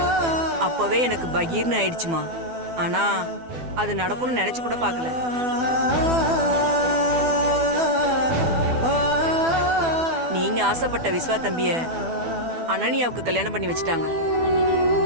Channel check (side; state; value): left; late; 12 ms